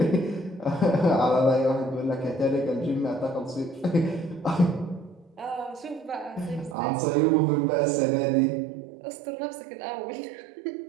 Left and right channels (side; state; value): left; drops out; at 6.8 s